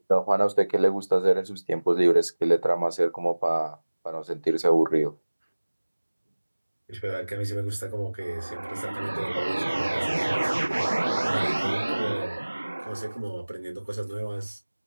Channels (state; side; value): inverted; both; correlation -1.00